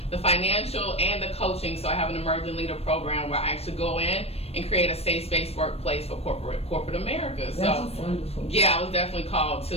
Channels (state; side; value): late; right; 0.29 ms